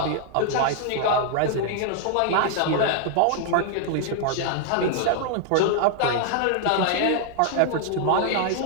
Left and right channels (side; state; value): both; different; correlation 0.00